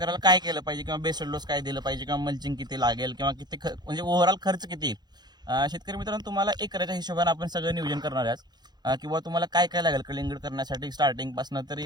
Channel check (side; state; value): left; late; 0.20 ms